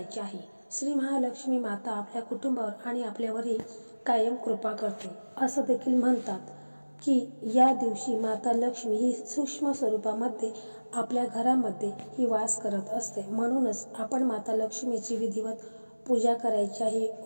आहे. श्री महालक्ष्मी माता आपल्या कुटुंबावर आणि आपल्यावरही कायम कृपा करते. असं देखील म्हणतात की या दिवशी माता लक्ष्मी ही सूक्ष्म स्वरूपामध्ये आपल्या घरामध्ये ही वास करत असते. म्हणूनच आपण माता लक्ष्मीची विधिवत पूजा करायची आहे,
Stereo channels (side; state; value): both; inverted; correlation -1.00